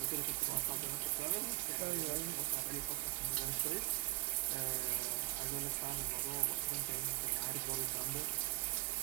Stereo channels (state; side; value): quieter; left; 21.3 dB